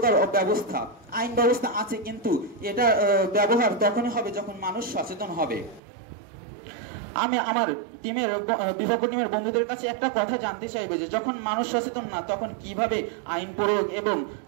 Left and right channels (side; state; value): left; drops out; at 5.8 s